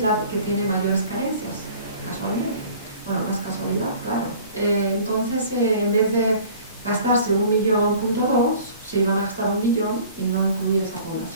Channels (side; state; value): both; inverted; correlation -0.48